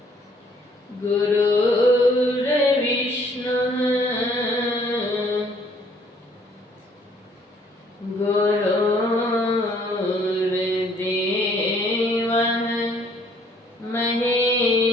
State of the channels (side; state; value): both; normal; correlation 0.62